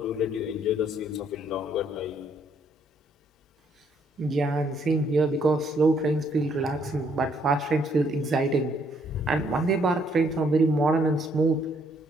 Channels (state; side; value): normal; both; correlation 0.68